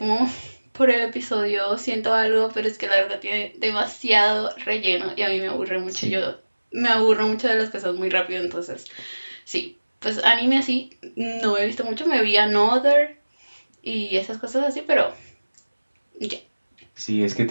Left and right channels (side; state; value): both; inverted; correlation -1.00